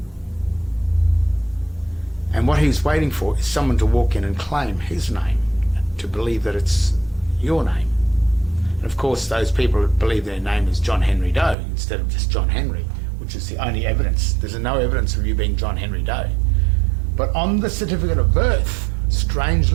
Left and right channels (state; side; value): drops out; left; at 11.6 s